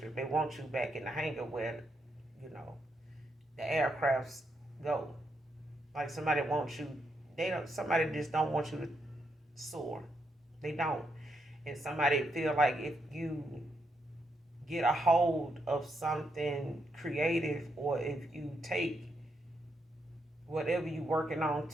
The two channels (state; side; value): normal; both; correlation 0.80